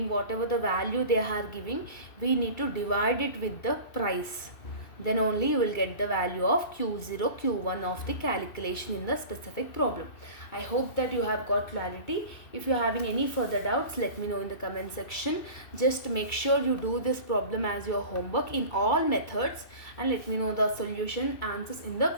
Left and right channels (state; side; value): late; right; 2.6 ms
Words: whatever the value they are giving, we need to divide it with the price. Then only you will get the value of Q0 Q1 of the calculation in the specific problem. I hope that you have got clarity. If you are having any further doubts, let me know in the comment section. Just make sure you do this problem as your homework in all methods and let me know the solution answers in